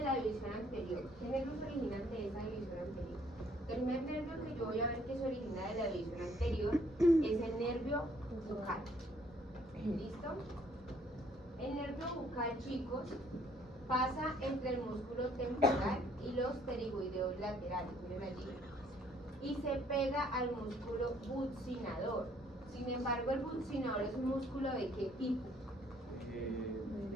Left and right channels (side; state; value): both; normal; correlation 0.63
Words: división anterior. ¿Qué nervios se originan de esa división anterior? El primer nervio que yo voy a ver que se origina de la división anterior es el nervio bucal. ¿Listo? El nervio bucal, chicos, pasa entre el músculo temporal y los pterigoideos laterales, miren allí, y se pega al músculo buccinador. Sin embargo, el buccinador es un músculo ¿de qué tipo?